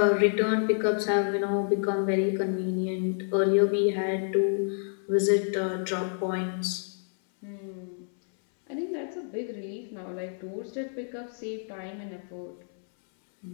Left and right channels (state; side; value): silent; right; 59 dB below the other